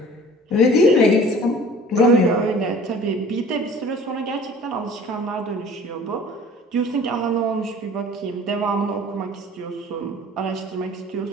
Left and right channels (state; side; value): normal; both; correlation 0.47